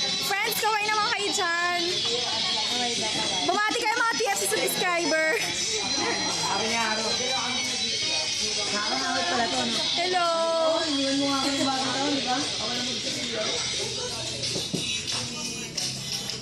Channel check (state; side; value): identical; both; correlation 1.00